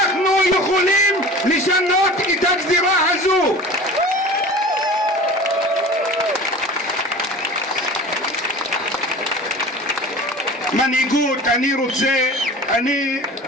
יכולים לשנות את הגזירה הזו. מנהיגות, אני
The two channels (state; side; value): normal; both; correlation 0.38